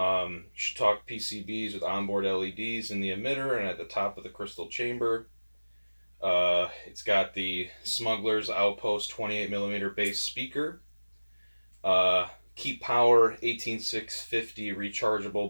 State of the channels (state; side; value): inverted; both; correlation -1.00